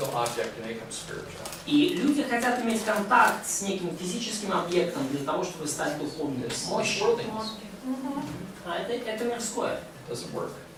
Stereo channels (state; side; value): identical; both; correlation 1.00